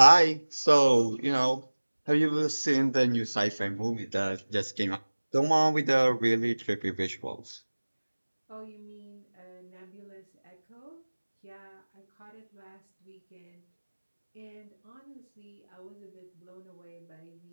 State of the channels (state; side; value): inverted; both; correlation -1.00